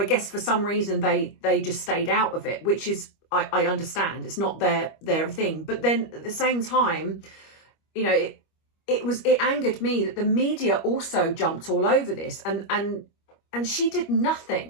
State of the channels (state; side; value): late; right; 25 ms